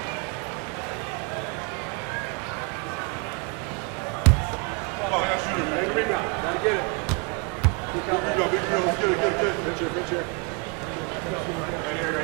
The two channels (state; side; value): quieter; left; 31.5 dB